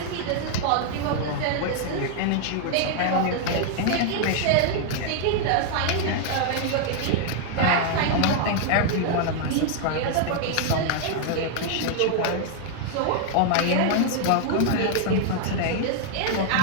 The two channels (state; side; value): different; both; correlation 0.00